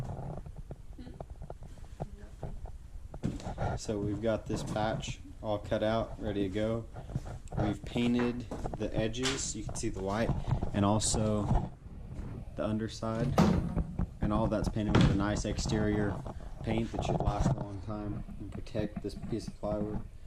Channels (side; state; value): both; identical; correlation 1.00